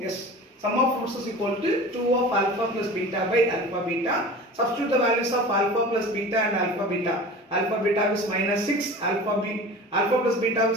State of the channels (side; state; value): both; normal; correlation 0.37